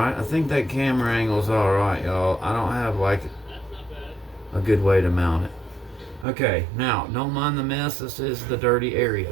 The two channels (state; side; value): drops out; left; at 6.2 s